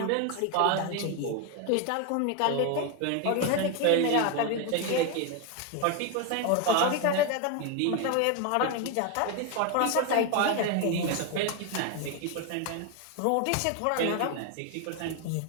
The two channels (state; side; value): different; both; correlation 0.01